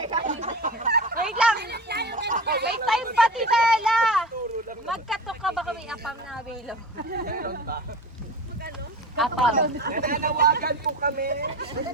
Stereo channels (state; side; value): normal; both; correlation 0.31